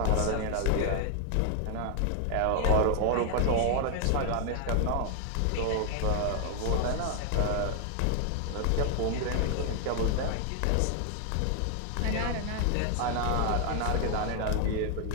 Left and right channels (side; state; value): both; different; correlation 0.00